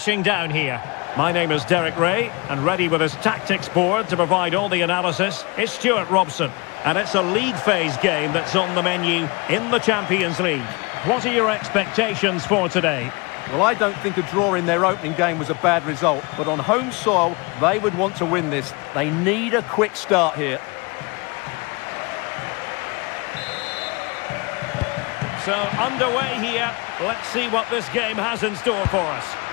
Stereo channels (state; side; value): quieter; right; 27.6 dB